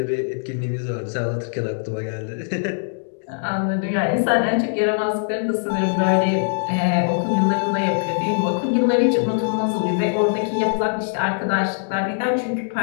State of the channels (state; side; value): silent; right; digital silence